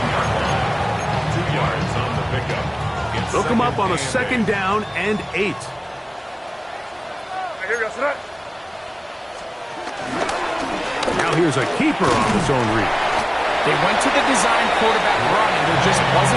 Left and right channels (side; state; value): both; identical; correlation 1.00